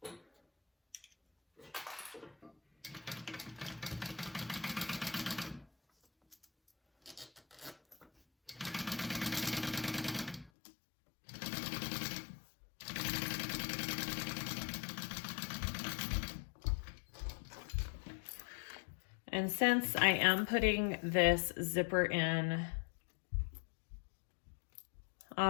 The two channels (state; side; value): drops out; right; at 10.5 s